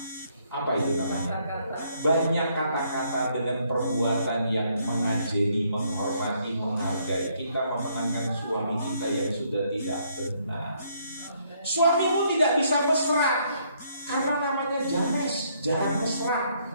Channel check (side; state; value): both; inverted; correlation -0.69